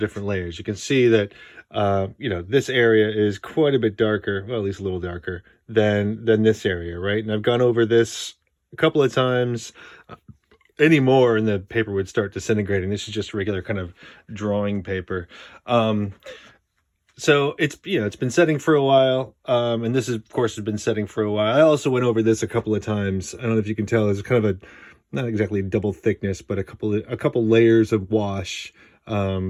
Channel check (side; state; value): both; identical; correlation 1.00